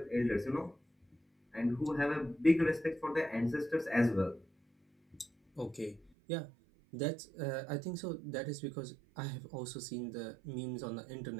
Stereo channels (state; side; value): drops out; left; at 6.1 s